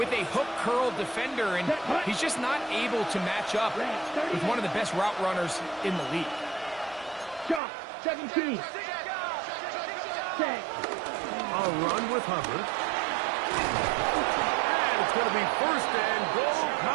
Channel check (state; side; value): drops out; left; at 7.6 s